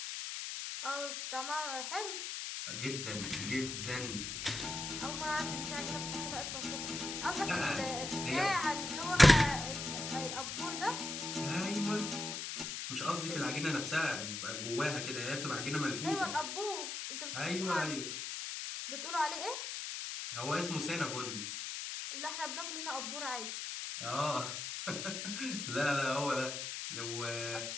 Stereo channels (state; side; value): noise; left; hiss, 5 dB below the sound